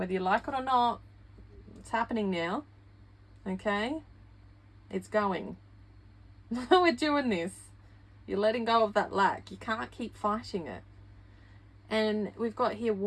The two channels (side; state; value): both; identical; correlation 1.00